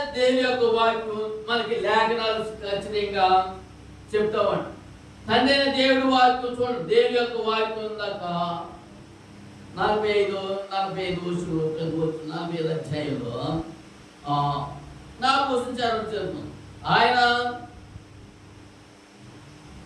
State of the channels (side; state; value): both; identical; correlation 1.00